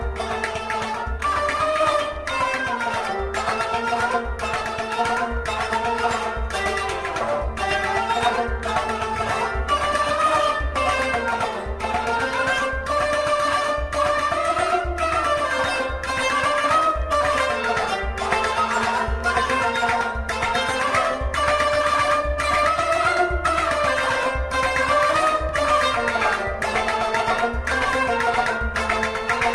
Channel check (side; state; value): both; identical; correlation 1.00